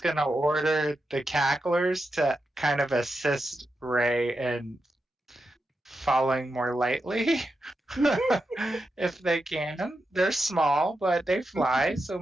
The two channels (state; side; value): normal; both; correlation 0.88